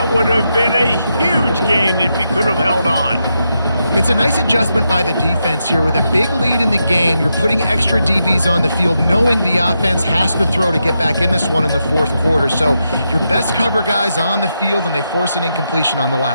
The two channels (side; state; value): both; inverted; correlation -0.84